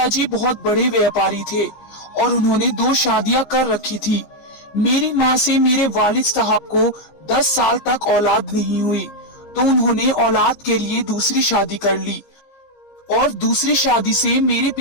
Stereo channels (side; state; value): right; late; 15 ms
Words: बहुत बड़े व्यापारी थे और उन्होंने 2 शादियां कर रखी थी। मेरी माँ से मेरे वालिद साहब को 10 साल तक औलाद नहीं हुई, तो उन्होंने औलाद के लिए दूसरी शादी कर ली और दूसरी शादी से मेरे